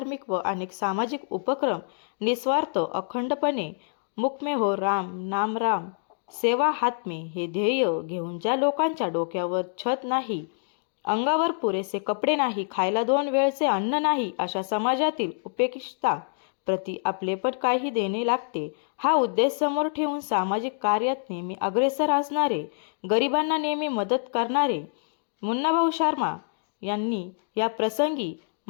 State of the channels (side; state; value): right; silent; digital silence